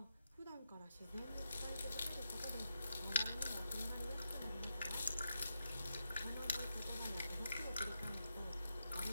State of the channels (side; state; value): both; inverted; correlation -0.86